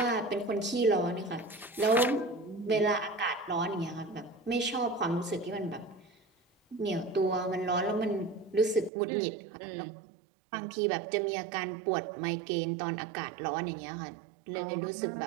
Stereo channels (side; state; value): left; drops out; at 8.9 s